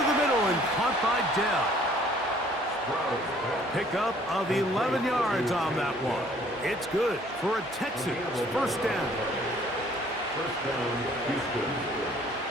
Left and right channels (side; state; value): both; normal; correlation 0.58